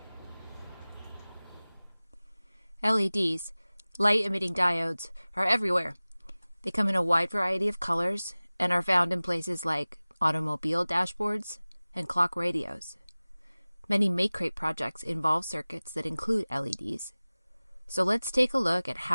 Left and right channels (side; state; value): both; inverted; correlation -0.99